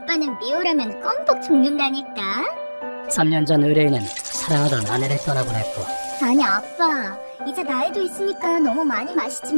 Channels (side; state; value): both; inverted; correlation -1.00